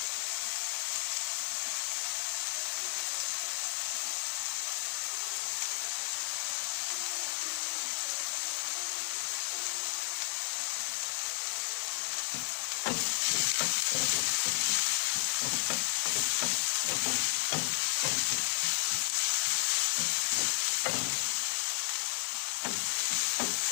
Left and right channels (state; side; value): silent; right; 56 dB below the other